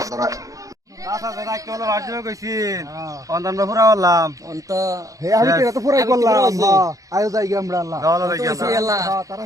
চাচা দাদা কেবল বাড়িতে কইছিন অন্তর পুরা বললাম অন্ত হে আমি তো এটা পুরাই আমি তো করলাম পুরাই করছি। আয়ো যাই গিয়া আমরা আল্লাহ যাও লাগি তো সে এলা তারা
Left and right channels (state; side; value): late; left; 0.16 ms